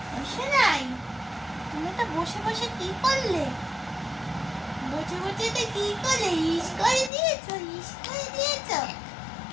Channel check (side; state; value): right; drops out; at 7.1 s